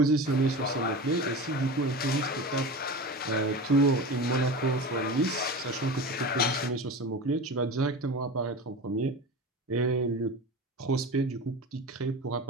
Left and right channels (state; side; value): normal; both; correlation 0.30